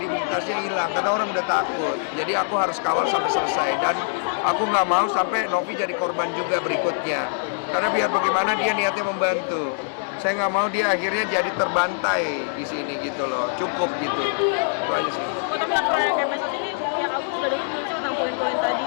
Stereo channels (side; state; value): right; silent; digital silence